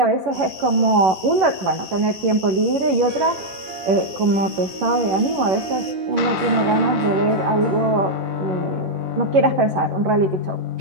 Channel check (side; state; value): left; late; 11 ms